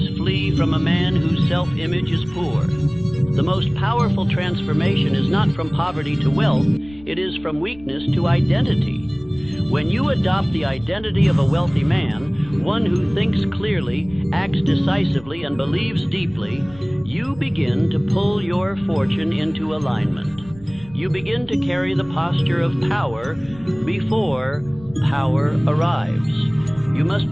flee from a man whose self-image is poor. The most powerful transformation is not from poverty to wealth, it is from weakness to identity. When you adopt the identity of a wealthy man, one who thinks clearly, acts decisively, and believes deeply, you begin to pull your fortune into alignment. You begin to carry the posture of power before power arrives. You must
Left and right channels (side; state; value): left; noise; rumble, 21 dB below the sound